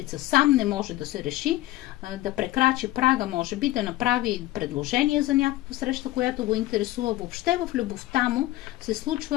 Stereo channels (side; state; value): right; quieter; 16.5 dB